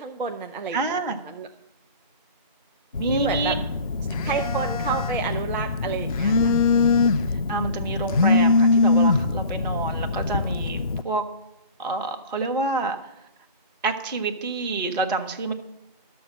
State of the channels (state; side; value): inverted; both; correlation -0.40